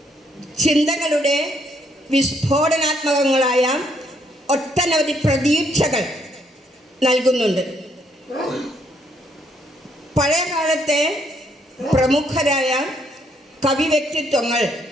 ചിന്തകളുടെ വിസ്ഫോടനാത്മകങ്ങളായ ഒട്ടനവധി പ്രതീക്ഷകൾ നൽകുന്നുണ്ട്. പഴയ കാലത്തെ പ്രമുഖരായ കവി വ്യക്തിത്വങ്ങൾ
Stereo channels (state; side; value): normal; both; correlation 0.71